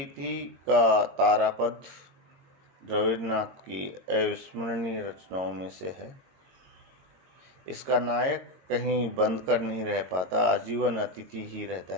का तारापद रविन्द्रनाथ की अविस्मरणीय रचनाओं में से है। इसका नायक कहीं बंद कर नहीं रह पाता, आजीवन अतिथि ही रहता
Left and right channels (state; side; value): late; left; 22 ms